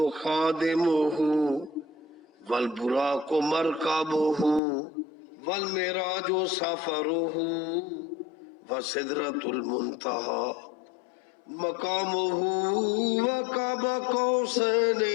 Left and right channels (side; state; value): right; drops out; at 4.6 s